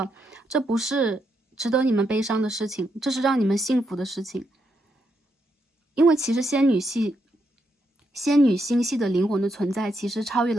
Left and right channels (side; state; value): both; normal; correlation 0.80